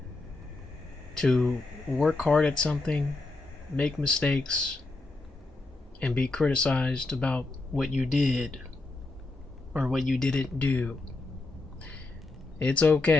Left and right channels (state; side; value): quieter; right; 3.3 dB